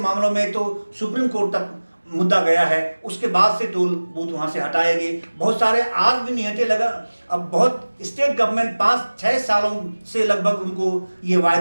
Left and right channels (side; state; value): both; inverted; correlation -1.00